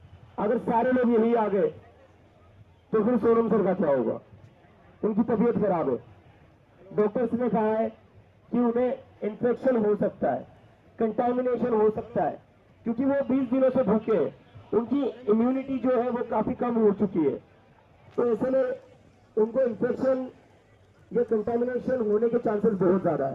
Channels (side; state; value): both; identical; correlation 1.00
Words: अगर सारे लोग यही आ गए तो फिर सोनम सर का क्या होगा? उनकी तबीयत खराब है, डॉक्टर्स ने कहा है कि उन्हें इन्फेक्शन हो सकता है, कंटामिनेशन हो सकता है, क्योंकि वो 20 दिनों से भूखे हैं, उनकी इम्यूनिटी जो है वो काफी कम हो चुकी है। तो ऐसे में उनको इन्फेक्शन या कंटामिनेशन होने के चांसेस बहुत ज्यादा